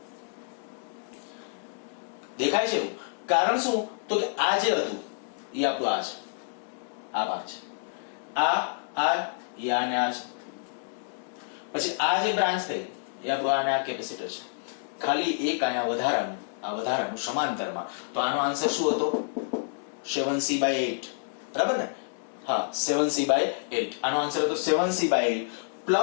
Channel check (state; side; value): silent; right; digital silence